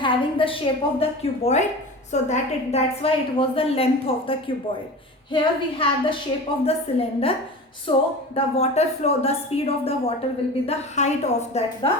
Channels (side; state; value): both; normal; correlation 0.33